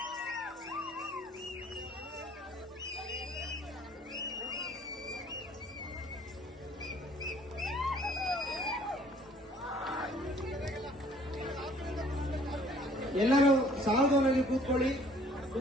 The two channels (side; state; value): both; normal; correlation 0.57